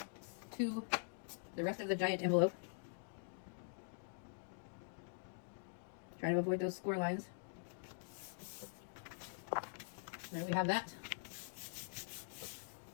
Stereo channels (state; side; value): silent; right; digital silence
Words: to the rest of the giant envelope. Trying to avoid those score lines. There we have that.